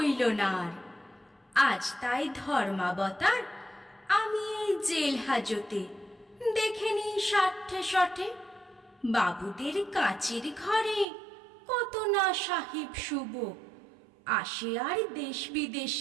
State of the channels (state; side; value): drops out; left; at 11.1 s